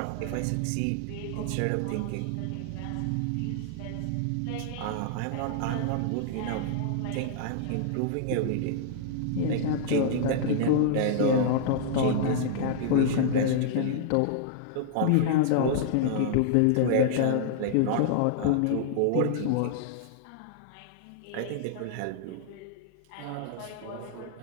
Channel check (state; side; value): different; both; correlation -0.01